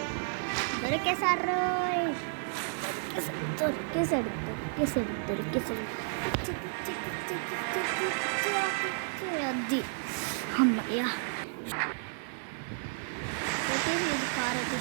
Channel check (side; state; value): left; silent; digital silence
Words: దొరికేసారు. అది అమ్మయ్యా. అయితే ఇది కార్ అయితే